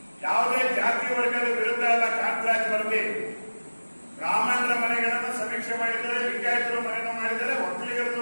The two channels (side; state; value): both; inverted; correlation -1.00